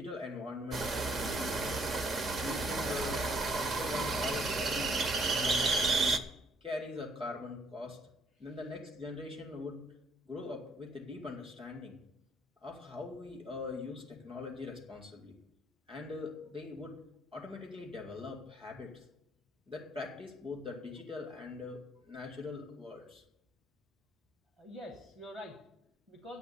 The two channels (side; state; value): both; normal; correlation 0.66